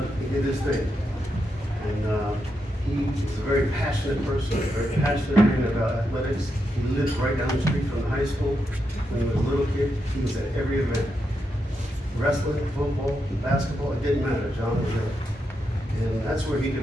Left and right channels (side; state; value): both; normal; correlation 0.84